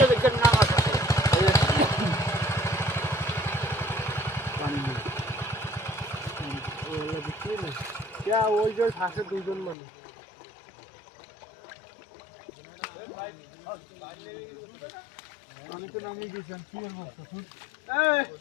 দেখেন না আছে পানি ওলা দেখি না क्या ওই যে থাকে দুইজন মানে আমি তো নামিয়ে দিয়েছেন কি এর মুখ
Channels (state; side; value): drops out; right; at 9.8 s